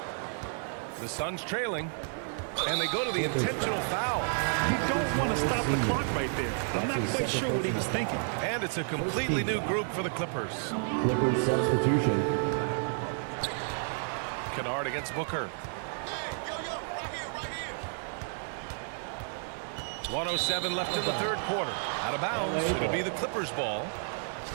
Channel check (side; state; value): left; silent; 57 dB below the other